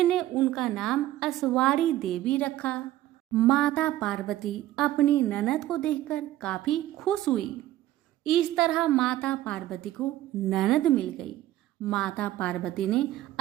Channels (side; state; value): left; quieter; 14.4 dB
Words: उनका नाम अस्वारी देवी रखा। माता पार्वती अपनी ननद को देखकर काफी खुश हुई। इस तरह माता पार्वती को ननद मिल गई। माता पार्वती ने